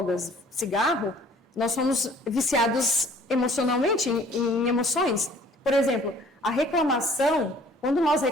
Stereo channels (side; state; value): both; normal; correlation 0.54